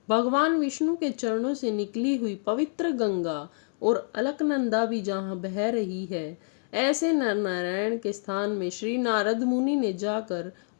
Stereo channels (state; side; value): silent; right; digital silence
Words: भगवान विष्णु के चरणों से निकली हुई पवित्र गंगा और अलकनंदा भी जहाँ बह रही है, ऐसे नर नारायण के स्थान में श्री नारद मुनि ने जाकर